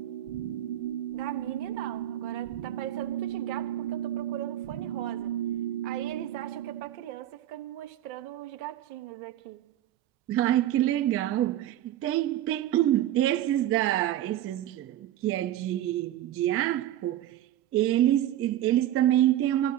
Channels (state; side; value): quieter; left; 12.8 dB